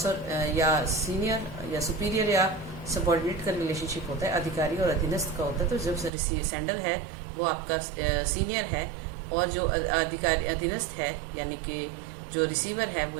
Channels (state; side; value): drops out; left; at 6.1 s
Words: और या सीनियर या सुपीरियर या सबॉर्डिनेट का रिलेशनशिप होता है, अधिकारी और अधीनस्थ का होता है। तो जब सेंडर है वो आपका सीनियर है और जो अधिकारी अधीनस्थ है यानी कि जो रिसीवर है वो